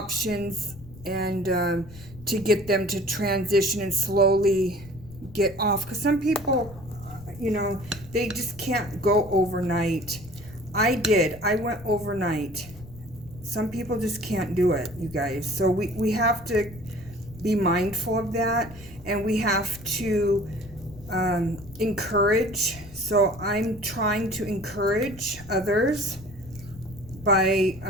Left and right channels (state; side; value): noise; left; rumble, 18 dB below the sound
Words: and to get them to transition and slowly get off. Because some people, you know, they just can't go overnight. I did. I went overnight. Some people just can't do it, you guys. So we have to be mindful of that, and we have to encourage. So I'm trying to encourage others by